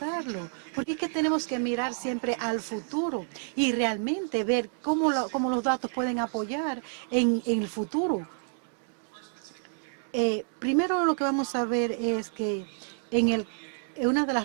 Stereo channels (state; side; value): silent; left; 59 dB below the other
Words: porque es que tenemos que mirar siempre al futuro y realmente ver cómo los datos pueden apoyar en el futuro. Primero lo que vamos a ver es que una de